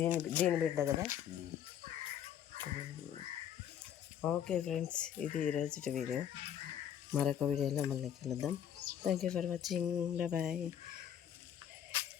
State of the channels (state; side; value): quieter; right; 9.6 dB